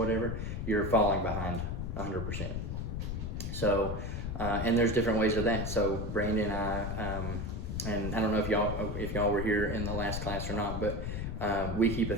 you're falling behind 100%. So, and there's different ways of that. So Brandon and I, and I don't know if y'all were here in the last class or not, but we keep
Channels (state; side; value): noise; left; rumble, 3 dB below the sound